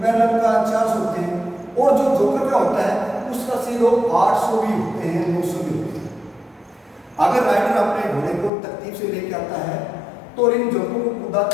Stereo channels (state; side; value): drops out; right; at 8.5 s